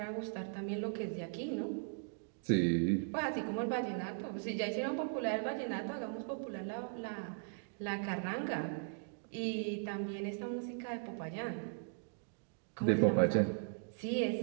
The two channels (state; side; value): silent; left; digital silence